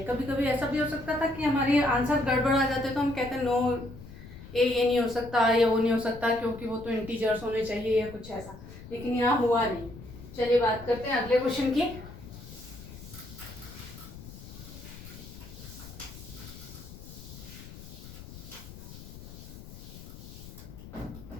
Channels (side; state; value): left; noise; rumble, 15 dB below the sound